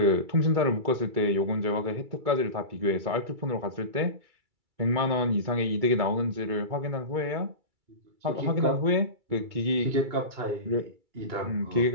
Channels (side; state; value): left; late; 2.3 ms